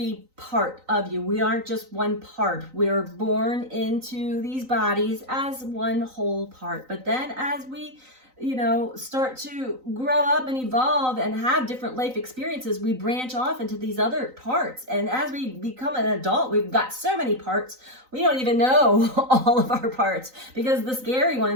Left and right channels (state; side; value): late; left; 3.9 ms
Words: part of you. We aren't just one part. We're born into these bodies as one whole part. But then as we, start to grow up and evolve and have different life experiences, we branch off into these other parts. And as we become an adult, we've got so many parts, we don't even know all of our parts, because the scary